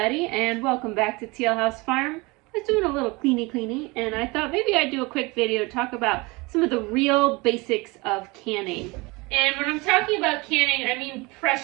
and welcome back to Teal House Farm. I was doing a little cleany, and I thought maybe I'd do a quick video to talk about some of the real basics of canning. And when I'm talking about canning, I mean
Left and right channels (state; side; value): quieter; left; 25.0 dB